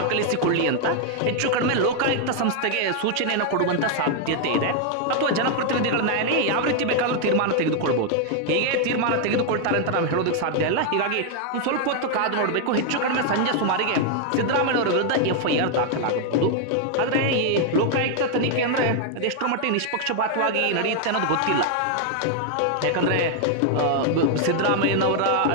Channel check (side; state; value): both; different; correlation 0.00